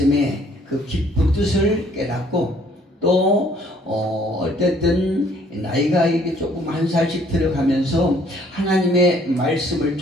그 깊은 뜻을 깨닫고, 또 어쨌든 나이가 이렇게 조금 한 살씩 들어가면서 하나님의 말씀을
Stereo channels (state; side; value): normal; both; correlation 0.61